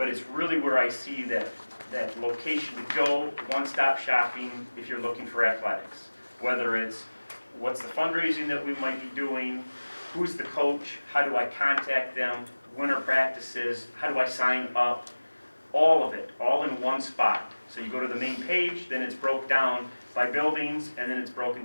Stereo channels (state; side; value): inverted; both; correlation -1.00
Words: it's really where I see that location to go, one-stop shopping if you're looking for athletics. Whether it's what's the fundraising that we might be doing, who's the coach, how do I contact them, winter practices, how do I sign up, all of it, all in one spot. So you go to the main page, then it's broke down by buildings, and then it's broken